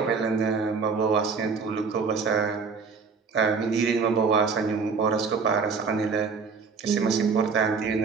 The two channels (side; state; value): left; quieter; 5.2 dB